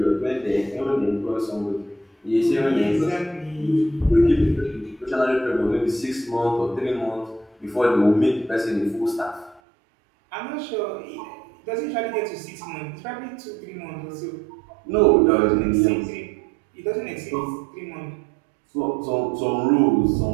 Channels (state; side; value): drops out; left; at 9.6 s